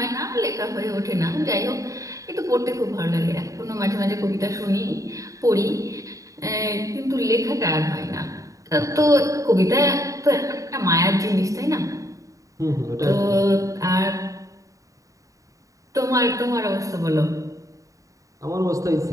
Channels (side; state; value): left; late; 0.16 ms